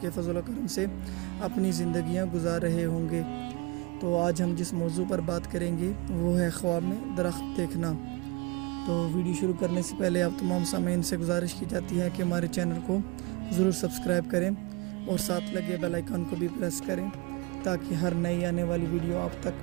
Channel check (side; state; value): left; quieter; 25.0 dB